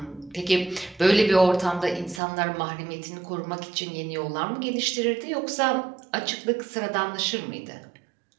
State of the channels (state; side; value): drops out; left; at 2.2 s